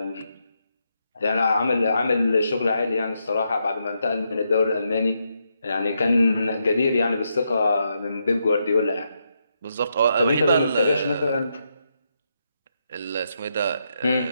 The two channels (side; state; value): both; inverted; correlation -0.81